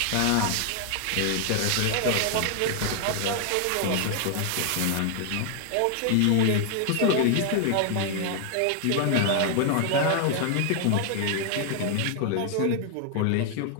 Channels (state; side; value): different; both; correlation 0.00